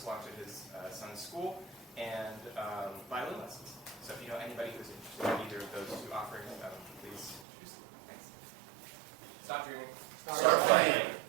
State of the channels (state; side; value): drops out; left; at 7.5 s